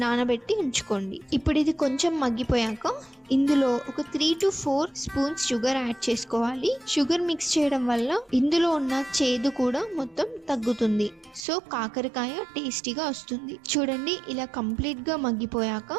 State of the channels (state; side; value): drops out; left; at 11.5 s